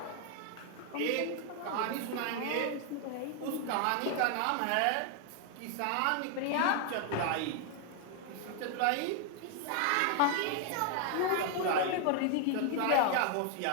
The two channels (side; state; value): both; different; correlation 0.00